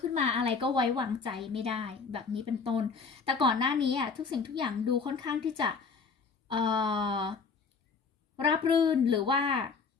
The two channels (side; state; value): right; quieter; 5.1 dB